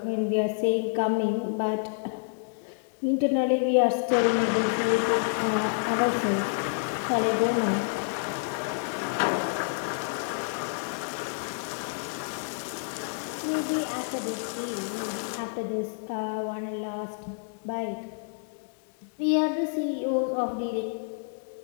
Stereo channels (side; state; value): right; silent; digital silence